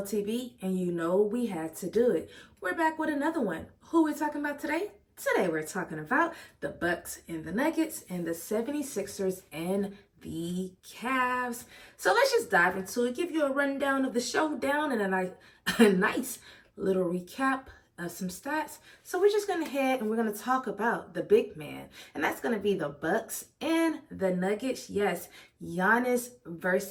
TV, and you know we had to do it. We're back with another one. Who we talking about today? Today we're talking about the Bucks and the Nuggets and the 76ers and the Cavs. So let's just dive into it, give you a rundown of the showdown and a nice little recap of some stats. So we're just going to head and we're going to talk about the big man, and that's going to be the Bucks and the Nuggets. Yes, Giannis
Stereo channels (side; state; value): both; identical; correlation 1.00